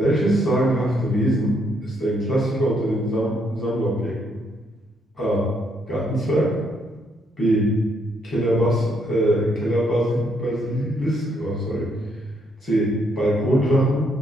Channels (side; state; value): both; normal; correlation 0.73